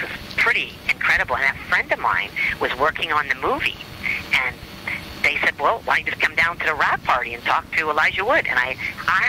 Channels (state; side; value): identical; both; correlation 1.00